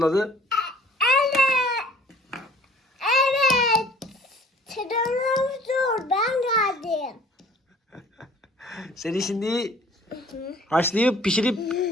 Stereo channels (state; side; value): normal; both; correlation 0.53